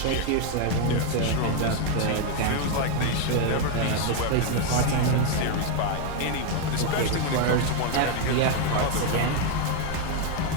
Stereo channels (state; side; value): different; both; correlation 0.01